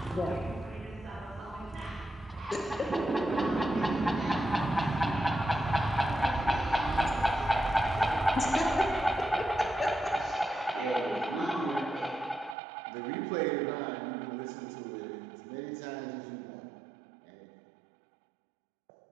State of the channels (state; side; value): drops out; left; at 12.6 s